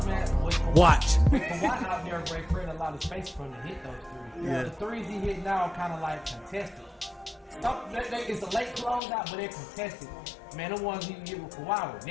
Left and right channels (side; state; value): right; drops out; at 9.0 s